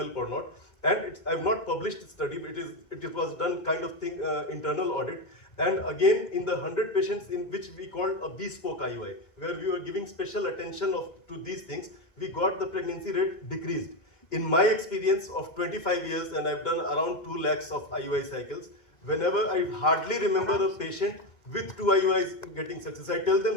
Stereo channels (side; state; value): right; late; 2.2 ms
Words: or not. And I've not published the study, but it was done kind of thing, internal audit. And again, in the 100 patients in which we called a bespoke IUI, where we were giving special attention to these things, we got the pregnancy rate decreased. In my experience of 25 years, and I've done around 2 lakhs of IUI cycles, whenever I hardly remember a patient with 2 IUIs getting success, I tell